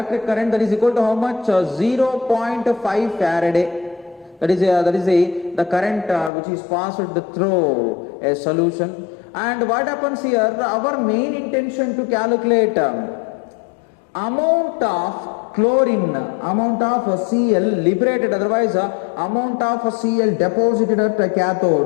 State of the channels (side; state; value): right; drops out; at 6.3 s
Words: current that is equal to how much? 0.5 Faraday. That is the current which is passed through a solution. And what happens here, our main intention to calculate amount of chlorine, amount of Cl liberated, otherwise amount of Cl deposited at a